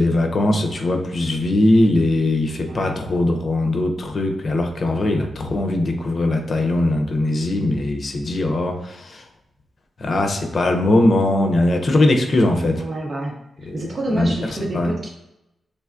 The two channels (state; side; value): normal; both; correlation 0.89